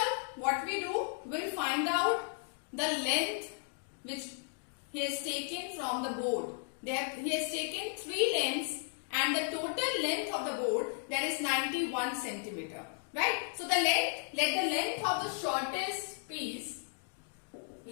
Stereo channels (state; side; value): silent; right; 55 dB below the other